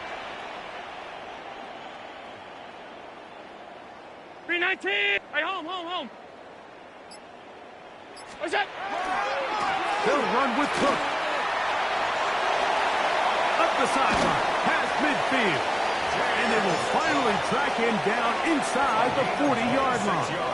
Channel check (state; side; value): identical; both; correlation 1.00